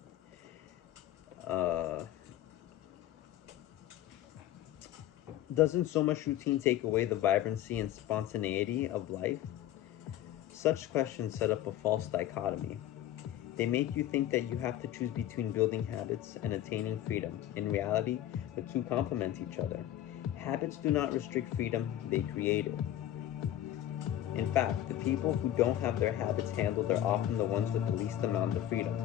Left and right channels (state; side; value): quieter; right; 12.5 dB